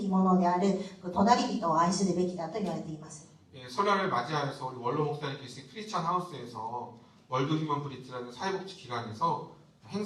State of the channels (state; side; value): identical; both; correlation 1.00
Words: ものである隣人を愛するべきだと言われています。 설날을 맞이하여서 우리 원로 목사님 계신 크리스찬 하우스에서 월드 휴먼 브릿지라는 사회복지 기관에서